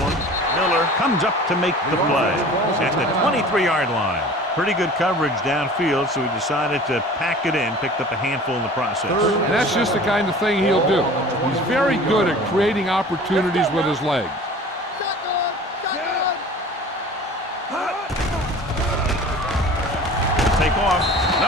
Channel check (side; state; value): both; normal; correlation 0.43